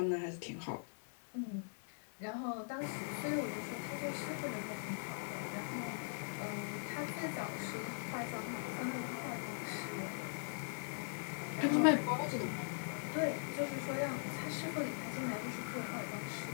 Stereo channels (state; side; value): silent; right; 50 dB below the other